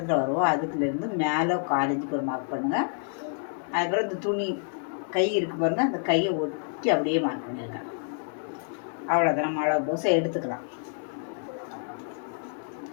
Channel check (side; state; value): right; silent; 59 dB below the other